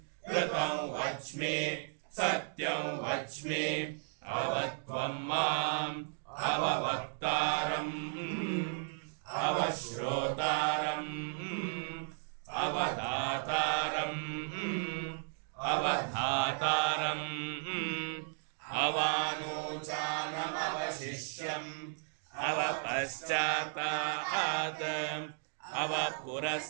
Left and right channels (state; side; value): silent; left; digital silence